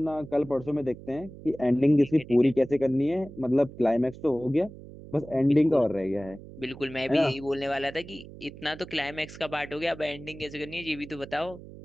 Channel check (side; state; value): right; noise; hum, 16 dB below the sound